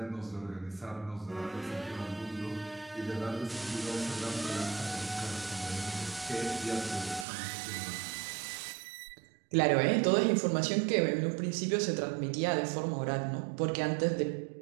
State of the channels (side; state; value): left; drops out; at 7.2 s